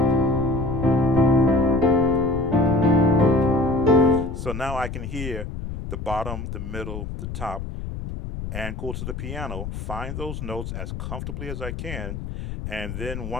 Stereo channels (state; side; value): noise; left; rumble, 7 dB below the sound